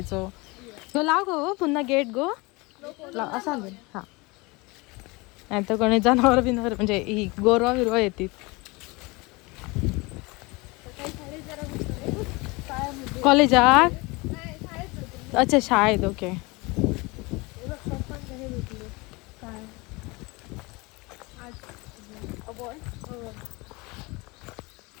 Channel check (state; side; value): quieter; right; 25.3 dB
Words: गो लाव गो पुन्हा गेट गो लाव असं आणून. हां, नाही तर कोणी जनावर बिनावर म्हणजे ही गोरवा बिरवा येतील. कॉलेजात अच्छा शाळेत. ओके.